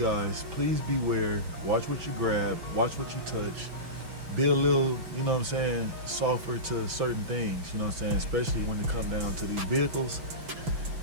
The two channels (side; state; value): left; late; 6.0 ms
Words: please beware. Watch what you grab, watch what you touch. Be a little, you know what I'm saying, softer to certain things, you know what I'm saying, especially when it comes down to these vehicles.